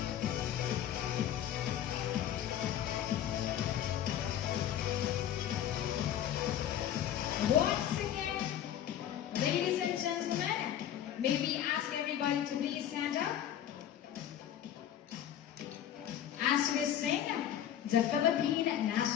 Once again, ladies and gentlemen, may we ask everybody to please stand up as we sing the Philippine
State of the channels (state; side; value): quieter; right; 10.7 dB